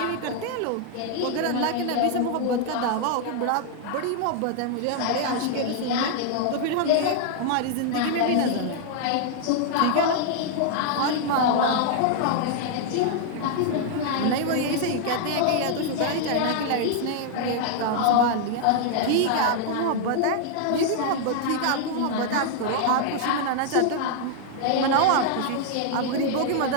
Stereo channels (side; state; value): both; different; correlation 0.00